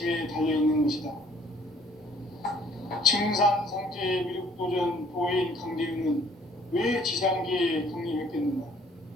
달려있는 것이다. 증산상제 미륵도전 도인 강대우는 왜 지상계에 강림했겠는가?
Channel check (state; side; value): normal; both; correlation 0.59